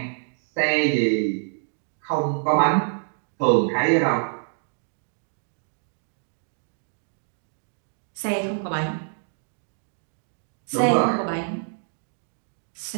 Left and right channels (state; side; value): silent; left; digital silence